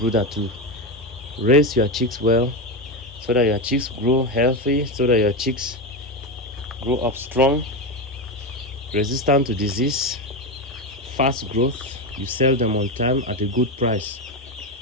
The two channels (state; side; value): normal; both; correlation 0.14